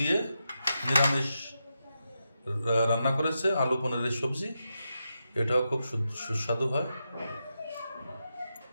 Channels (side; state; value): both; inverted; correlation -0.87